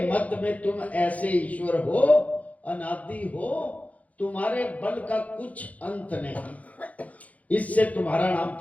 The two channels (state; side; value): late; right; 0.070 ms